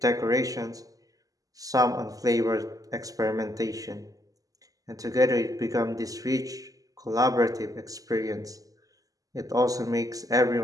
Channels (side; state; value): left; late; 0.17 ms